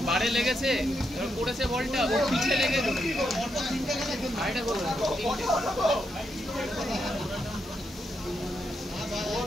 বারে লেগেছে এবার পড়েছে বলটা ওর পিছে লেগে আইটা গোল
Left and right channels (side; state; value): both; normal; correlation 0.82